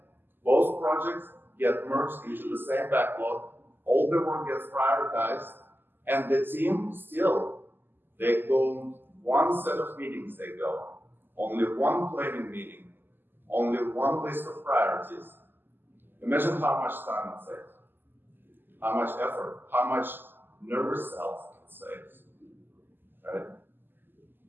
Both projects get merged into the same backlog, all the work gets prioritized, and the team still, They go one set of meetings, they go. Only one planning meeting. Only one list of priorities. Imagine how much time it saves. How much effort, how much nervous cells it saves. Right?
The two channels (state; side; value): late; left; 0.094 ms